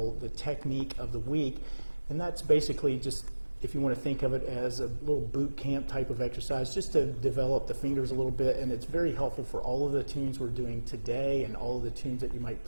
the technique of the week. And that's basically just, if you want to think of it as a little boot camp type of exercise, just to develop the fingers a little bit. And it's very helpful for all of the tunes we're doing today and all of the tunes that you might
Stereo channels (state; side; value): inverted; both; correlation -1.00